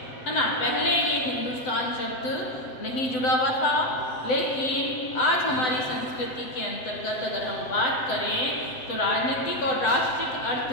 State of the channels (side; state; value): right; late; 7.9 ms